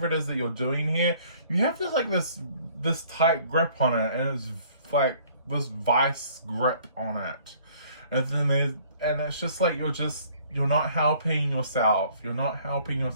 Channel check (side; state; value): both; inverted; correlation -0.57